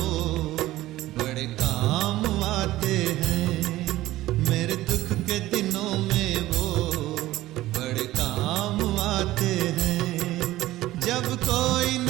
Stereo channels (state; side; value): quieter; left; 16.2 dB